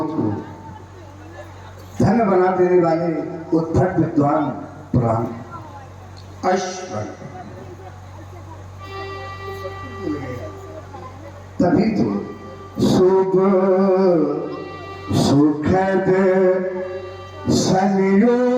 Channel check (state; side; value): identical; both; correlation 1.00